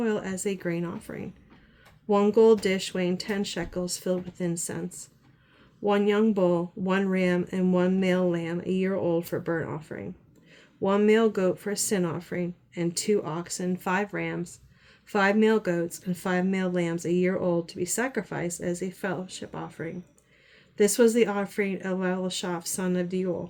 as a grain offering. 1 gold dish weighing 10 shekels filled with incense, 1 young bull, 1 ram, and 1 male lamb a year old for burnt offering, 1 male goat for a sin offering, and 2 oxen, 5 rams, 5 male goats, and 5 male lambs a year old to be sacrificed as a fellowship offering. This was the offering of Elishaph, son of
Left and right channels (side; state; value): both; identical; correlation 1.00